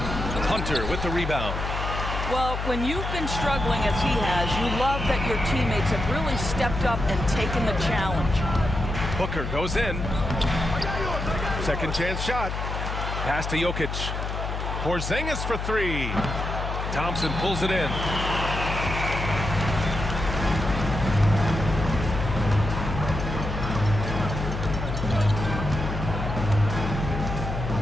Hunter with the rebound. Well, when you've been struggling as he has, you love that your teammates have really stepped up and taken the challenge. Booker goes in. Second chance shot. Pass to Jokic. Porzingis for three. Thompson pulls it in.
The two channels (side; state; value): left; noise; hum, 4 dB below the sound